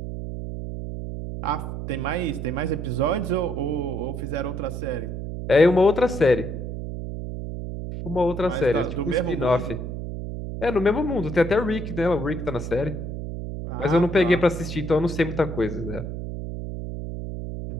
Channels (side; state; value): right; noise; hum, 6 dB below the sound